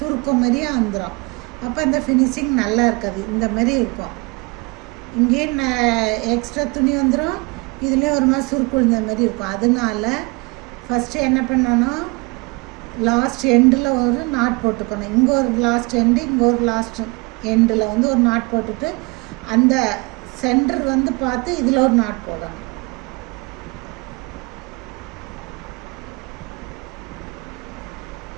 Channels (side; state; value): left; quieter; 28.1 dB